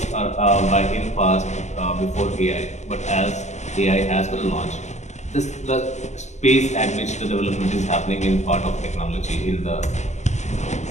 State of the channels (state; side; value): late; right; 0.33 ms